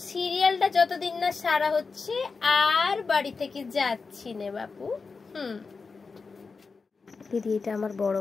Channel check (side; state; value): right; quieter; 4.6 dB